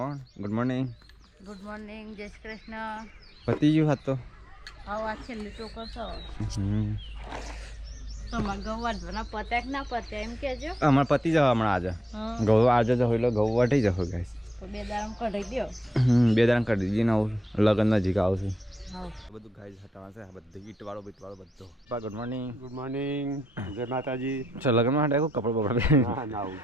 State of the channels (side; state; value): both; normal; correlation 0.84